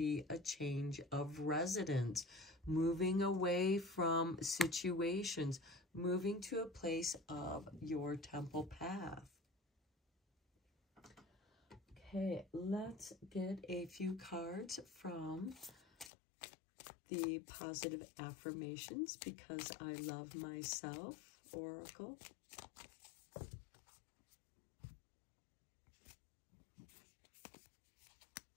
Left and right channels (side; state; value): right; drops out; at 16.1 s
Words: a change of residence, moving away from situations, moving to a place of your temple path. Okay, let's get a few cards from the positive affirmations because I love myself, Oracle.